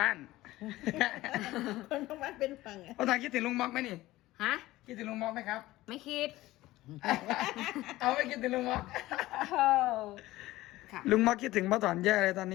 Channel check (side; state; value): right; quieter; 17.2 dB